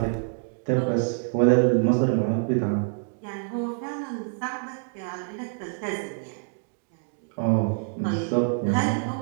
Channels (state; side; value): silent; left; digital silence